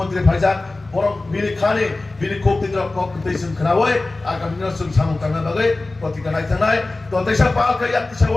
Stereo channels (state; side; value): quieter; right; 3.1 dB